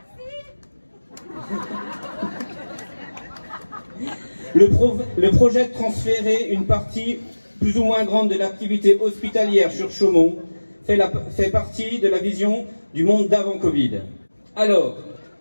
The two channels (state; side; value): inverted; both; correlation -1.00